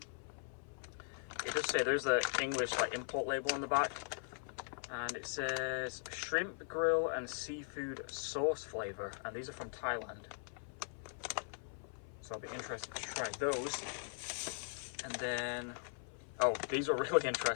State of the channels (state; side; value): silent; right; 51 dB below the other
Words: It does say there's the English import label on the back, and it says shrimp grill and seafood sauce flavor, and these are from Thailand. So I'll be interested to try those. And then, oh, these are really